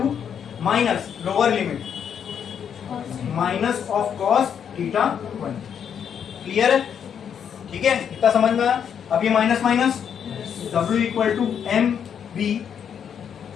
minus lower limit minus of cos theta 1। Clear है? ठीक है, इतना समझ में आया? अब ये minus minus, W equal to M B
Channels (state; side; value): quieter; right; 8.1 dB